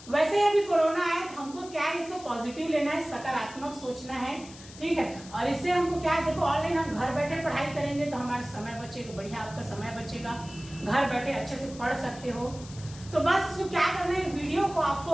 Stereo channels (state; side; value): noise; left; hiss, 18 dB below the sound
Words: वैसे अभी कोरोना आया तो हमको क्या है, इसको पॉजिटिव लेना है, सकारात्मक सोचना है, ठीक है। और इससे हमको क्या है, देखो ऑनलाइन हम घर बैठे पढ़ाई करेंगे तो हमारा समय बचेगा, बढ़िया आपका समय बचेगा, घर बैठे अच्छे से पढ़ सकते हो। तो बस इसको क्या करना है, वीडियो को